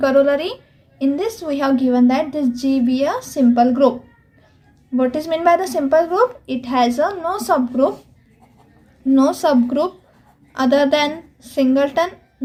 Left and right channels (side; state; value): both; identical; correlation 1.00